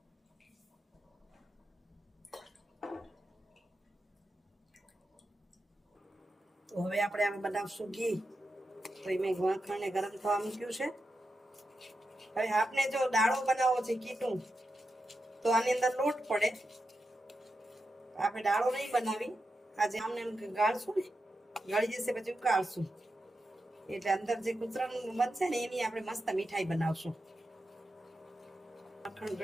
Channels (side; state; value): both; normal; correlation 0.88